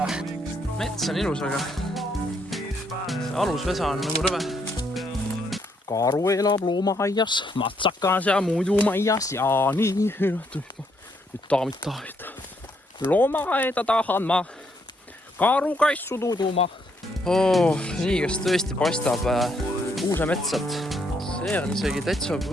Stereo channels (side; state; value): both; normal; correlation 0.73